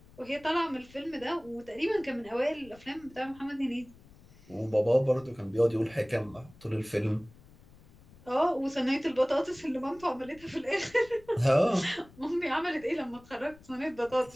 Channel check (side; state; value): left; noise; rumble, 24 dB below the sound